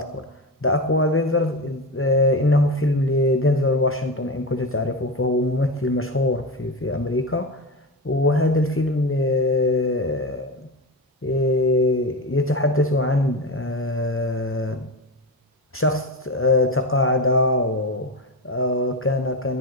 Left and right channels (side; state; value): both; normal; correlation 0.21